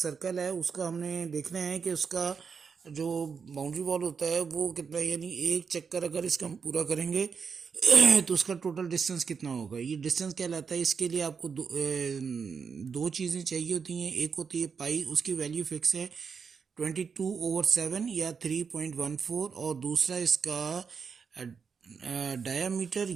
है, उसका हमने देखना है कि उसका जो बाउंड्री वॉल होता है वो कितना है, यानी एक चक्कर अगर इसका हम पूरा करेंगे तो उसका टोटल डिस्टेंस कितना होगा। ये डिस्टेंस कहलाता है। इसके लिए आपको दो चीज़ें चाहिए होती हैं। एक होती है पाई, उसकी वैल्यू फिक्स है 22/7 या 3.14, और दूसरा इसका डायामीटर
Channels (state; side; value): quieter; left; 5.9 dB